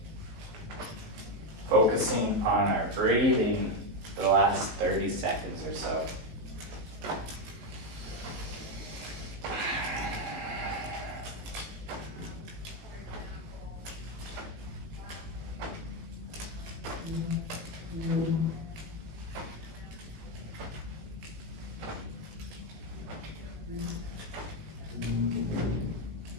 Focusing on our breathing for the last 30 seconds or so.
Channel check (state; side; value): late; left; 18 ms